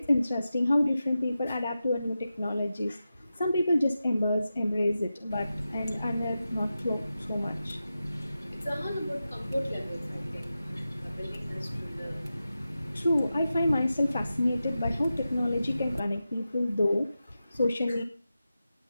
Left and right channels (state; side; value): inverted; both; correlation -0.92